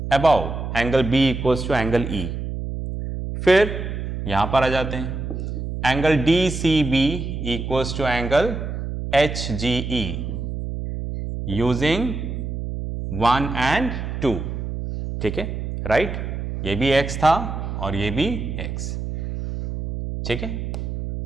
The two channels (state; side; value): noise; right; hum, 5 dB below the sound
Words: above angle B equals to angle E. फिर यहां पर आ जाते हैं, angle D C B equals to angle H G E using 1 and 2। ठीक है, राइट। ये भी x था और ये भी x। ठीक है,